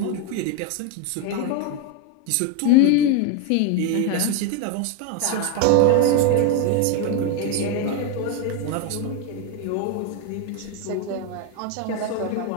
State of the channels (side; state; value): both; different; correlation 0.02